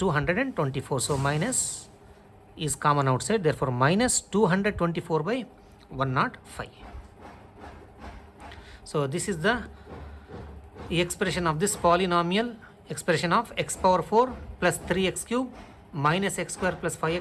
So minus is common outside, therefore minus 224 by 105. So this is the expression of this polynomial, expression of x power 4 plus 3x cube minus x square plus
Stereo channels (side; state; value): both; identical; correlation 1.00